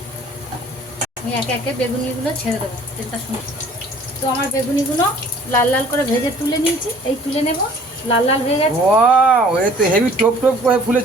আমি একে একে বেগুনিগুলো ছেড়ে দেবো তেলটা শুনে। তো আমার বেগুনিগুলো লাল লাল করে ভেজে তুলে নিয়েছি, এই তুলে নেব। লাল লাল হয়ে গেছে। ওয়াও, এ তো হেভি টপ টপ করে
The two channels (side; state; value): both; normal; correlation 0.52